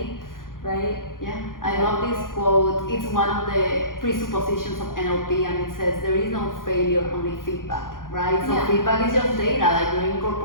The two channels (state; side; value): late; right; 0.90 ms